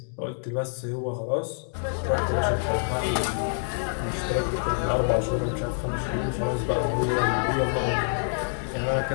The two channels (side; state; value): right; silent; digital silence